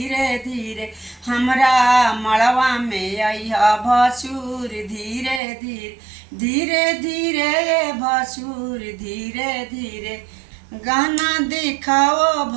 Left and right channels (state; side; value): drops out; left; at 5.4 s